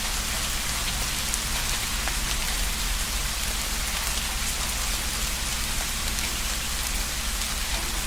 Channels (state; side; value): identical; both; correlation 1.00